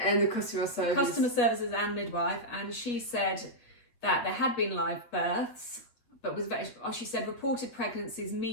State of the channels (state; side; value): late; right; 8.3 ms